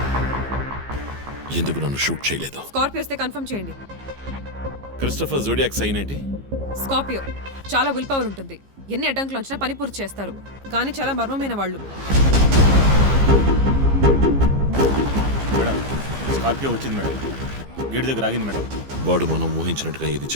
ఎందుకు నన్ను షూట్ చేయలేదు? స్కార్పియో వస్తే కన్ఫర్మ్ చేయండి. క్రిస్టఫర్ జోడియాక్ సైన్ ఏంటి? స్కార్పియో చాలా విల్ పవర్ ఉంటుంది. ఎన్ని అడ్డంకులు వచ్చినా పని పూర్తి చేస్తారు. కానీ చాలా మర్మమైన వాళ్ళు. మేడం, స్కార్పియో వచ్చింది మేడం. గేట్ దగ్గర ఆగింది మేడం. వాడు మనం ఊహించినట్టుగా ఏది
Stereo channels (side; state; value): left; late; 15 ms